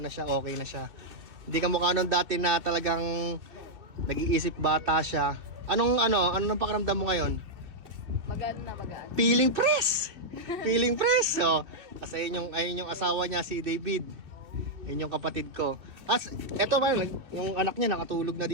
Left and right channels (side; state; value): left; late; 2.8 ms